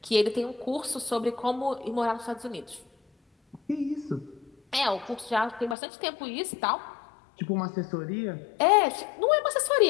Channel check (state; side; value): drops out; right; at 5.8 s